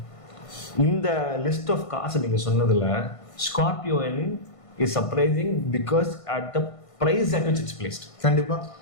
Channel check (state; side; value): late; right; 1.5 ms